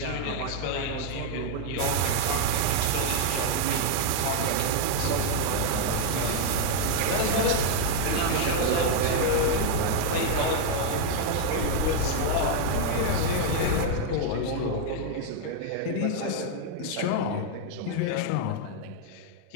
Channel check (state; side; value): different; both; correlation 0.00